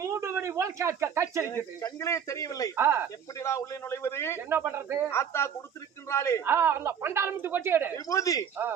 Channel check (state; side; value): quieter; left; 8.0 dB